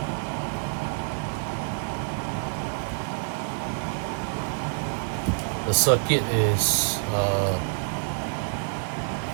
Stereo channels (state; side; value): silent; left; 60 dB below the other